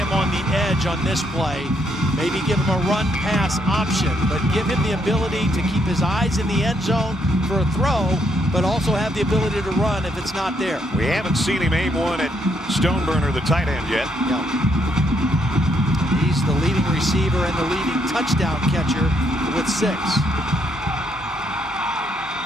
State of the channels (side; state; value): both; normal; correlation 0.74